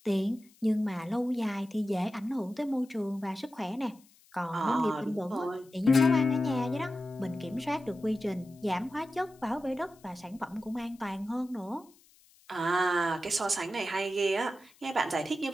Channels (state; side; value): noise; left; hiss, 29 dB below the sound